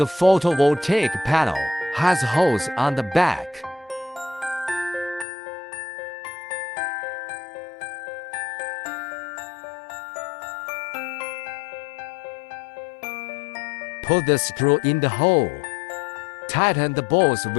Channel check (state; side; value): drops out; right; at 5.2 s